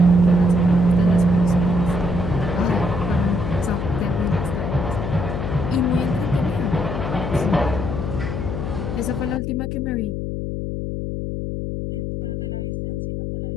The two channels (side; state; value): left; noise; hum, 3 dB below the sound